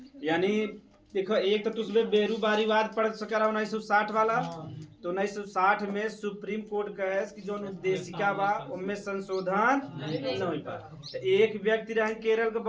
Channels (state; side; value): identical; both; correlation 1.00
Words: यानी देखो, एक तो तुझमें बेरूबारीवाद पढ़ सका 1960 वाला। तो 1960 में सुप्रीम कोर्ट कहे कि जो उद्देशिका बा उनमें संशोधन नहीं हो पा। तो एक व्यक्ति रहे केरल का